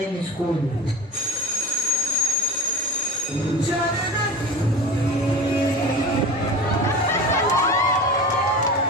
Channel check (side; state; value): both; normal; correlation 0.33